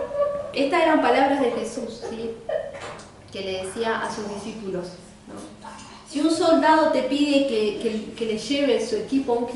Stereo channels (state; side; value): identical; both; correlation 1.00